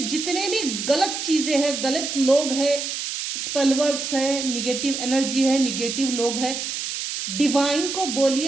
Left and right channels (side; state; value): right; noise; hiss, 4 dB below the sound